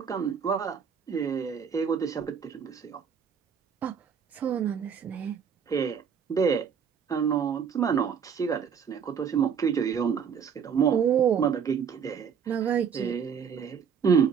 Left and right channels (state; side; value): quieter; left; 7.1 dB